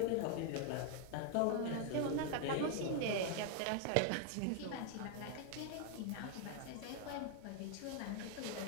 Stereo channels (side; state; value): both; different; correlation 0.00